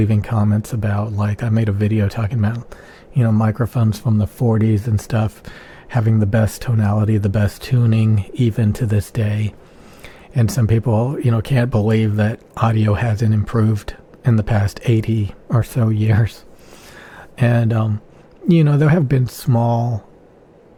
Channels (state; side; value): identical; both; correlation 1.00